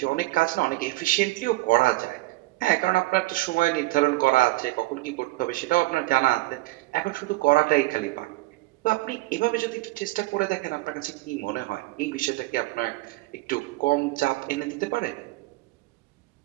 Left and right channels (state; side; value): quieter; left; 20.2 dB